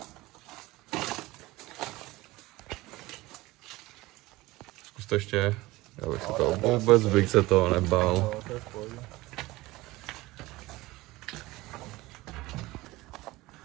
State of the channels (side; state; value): left; quieter; 19.7 dB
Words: Zkus to ještě. Já bych se to vůbec bych se toho nebál.